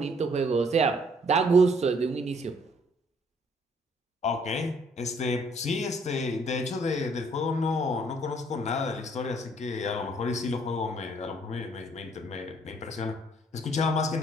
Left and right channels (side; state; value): both; normal; correlation 0.63